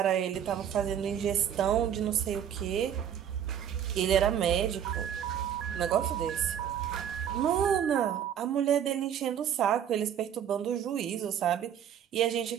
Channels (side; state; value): left; quieter; 9.2 dB